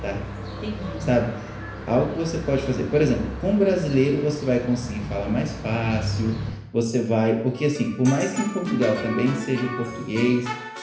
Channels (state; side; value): identical; both; correlation 1.00